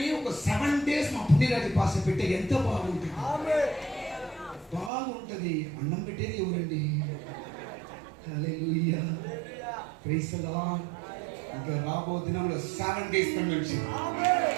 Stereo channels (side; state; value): left; drops out; at 4.9 s